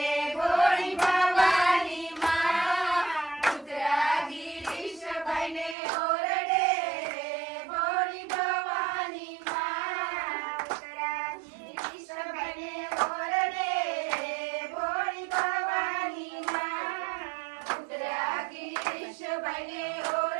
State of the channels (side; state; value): left; drops out; at 5.8 s